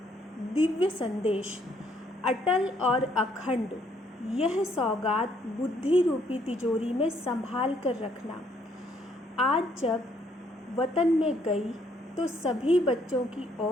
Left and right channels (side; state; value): both; normal; correlation 0.68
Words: दिव्य संदेश, अटल और अखंड, यह सौगात बुद्धि रूपी तिजोरी में संभाल कर रखना। आज जब वतन में गई तो सभी बच्चों की